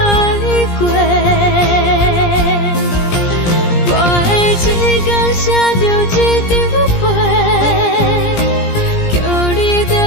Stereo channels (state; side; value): late; right; 17 ms